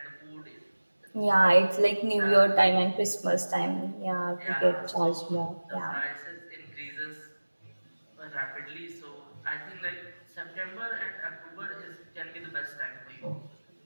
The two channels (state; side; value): inverted; both; correlation -1.00